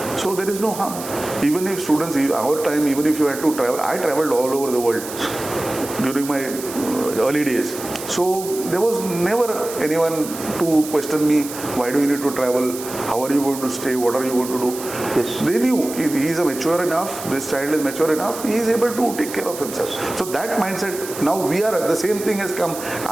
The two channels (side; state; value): right; noise; hiss, 11 dB below the sound